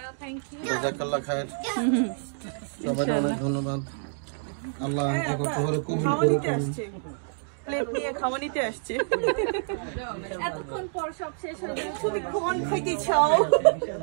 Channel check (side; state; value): left; silent; digital silence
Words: জাযাকাল্লাহ খায়ের। সবাইকে অনেক ধন্যবাদ। আল্লাহ কবুল করুন। প্লেট নিয়ে খাওয়া নিতে আসছে। এতক্ষণ পর সব শেষ হয়ে গেল। তুমি কোন খাইতে চাও?